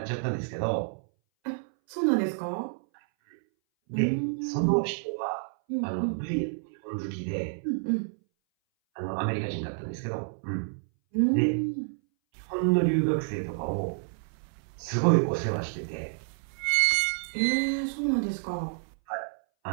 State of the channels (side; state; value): left; silent; 58 dB below the other